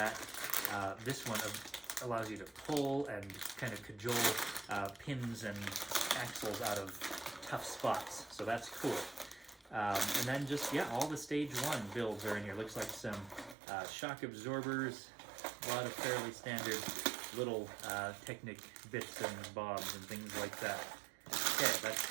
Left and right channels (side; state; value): left; drops out; at 13.6 s